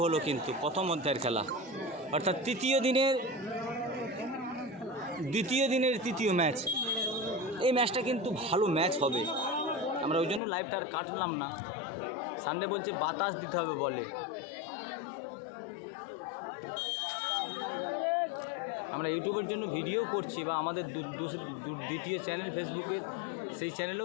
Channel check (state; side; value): drops out; right; at 10.4 s